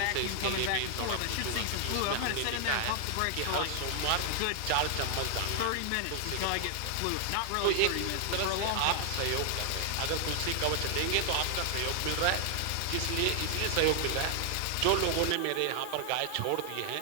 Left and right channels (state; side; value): different; both; correlation 0.00